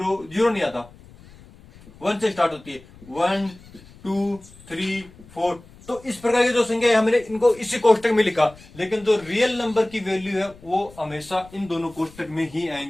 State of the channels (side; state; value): left; noise; rumble, 22 dB below the sound